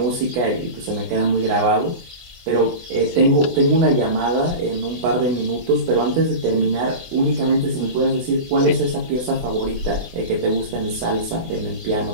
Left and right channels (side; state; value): left; late; 24 ms